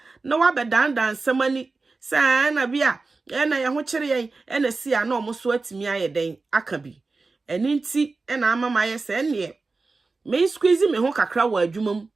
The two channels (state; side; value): quieter; left; 3.9 dB